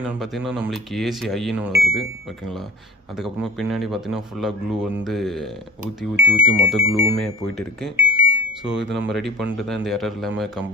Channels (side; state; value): both; normal; correlation 0.40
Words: பார்த்திங்கன்னா நம்மளுக்கு ஏசி ஐன்னு வருது, ஓகேங்களா. அதுக்கப்புறமா பின்னாடி பார்த்திங்கன்னா ஃபுல்லாக க்ளூ ஊற்றி மொத்த க்ளூவுமே போயிட்டு இருக்குது. ஸோ இது நம்ம ரெடி பண்ணிட்டு தான் இந்த எரர் இல்லாமல்